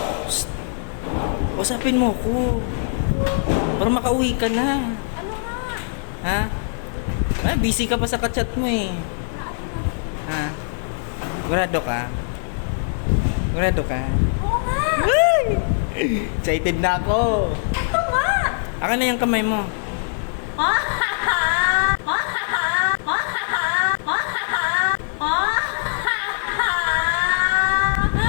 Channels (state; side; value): silent; right; 58 dB below the other